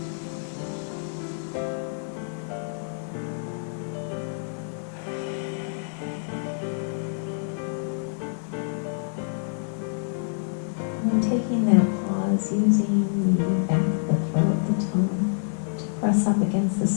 When taking that pause, using the back of the throat, the tongue, to press up against the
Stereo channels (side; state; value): right; silent; 58 dB below the other